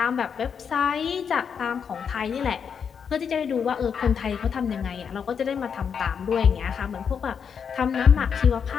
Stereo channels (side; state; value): right; quieter; 6.9 dB